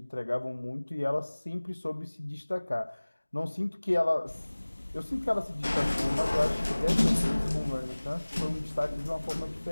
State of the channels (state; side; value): inverted; both; correlation -1.00